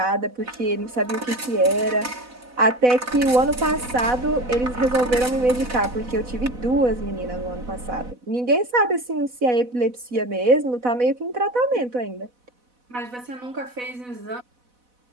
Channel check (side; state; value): left; late; 4.0 ms